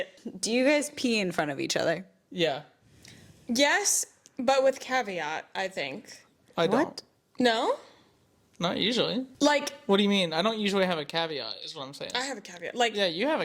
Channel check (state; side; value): identical; both; correlation 1.00